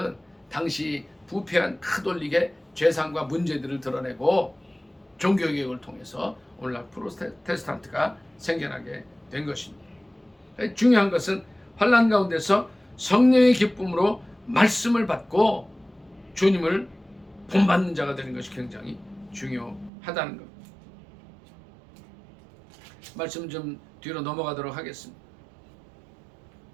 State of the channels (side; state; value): left; drops out; at 19.9 s